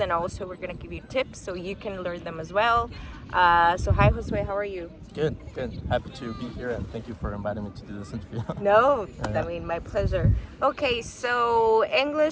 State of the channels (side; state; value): both; identical; correlation 1.00